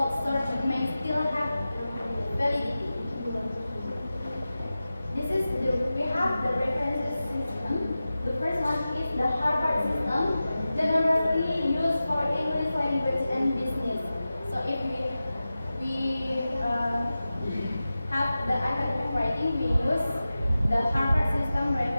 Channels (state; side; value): inverted; both; correlation -0.95